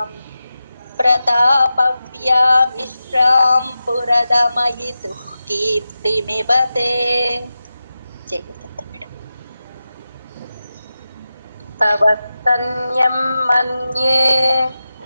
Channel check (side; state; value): both; inverted; correlation -0.92